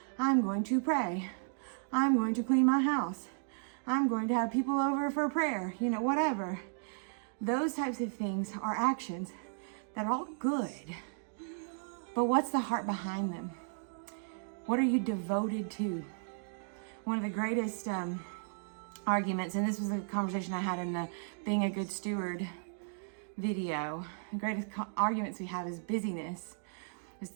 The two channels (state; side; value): silent; left; digital silence